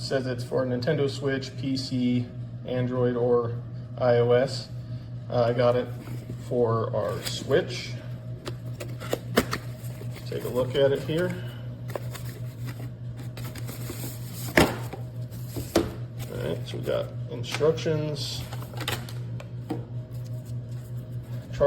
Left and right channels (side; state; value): both; identical; correlation 1.00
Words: it's for Nintendo Switch, PC, Android, or iOS. I got it for our Switch. Take a look at it here. Alright, so we got instructions,